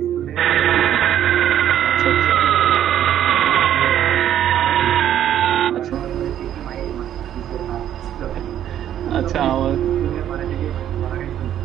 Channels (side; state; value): left; quieter; 10.8 dB